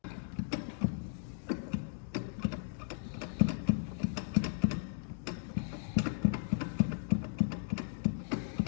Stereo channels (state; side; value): silent; right; digital silence